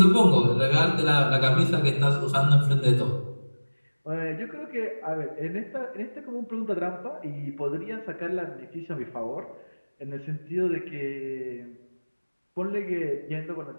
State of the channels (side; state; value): both; inverted; correlation -1.00